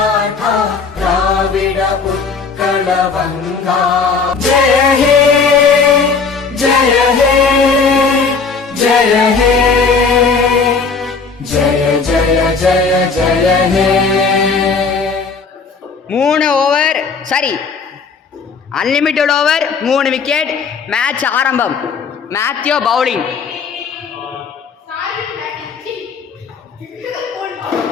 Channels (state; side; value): quieter; right; 5.0 dB